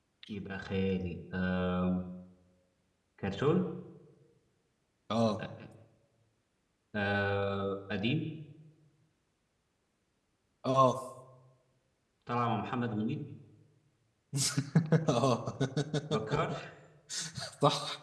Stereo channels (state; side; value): identical; both; correlation 1.00